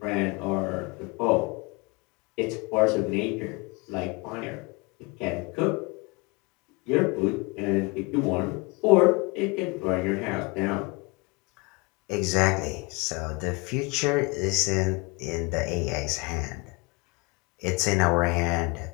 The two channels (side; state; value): right; quieter; 27.1 dB